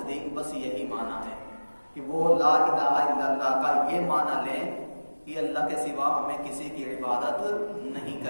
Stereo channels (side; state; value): both; inverted; correlation -1.00